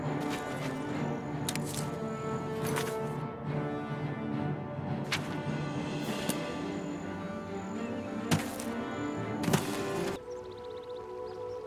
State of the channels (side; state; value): both; identical; correlation 1.00